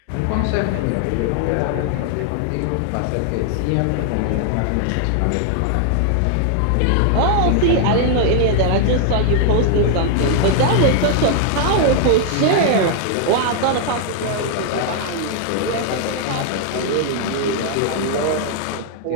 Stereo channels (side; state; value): both; different; correlation 0.00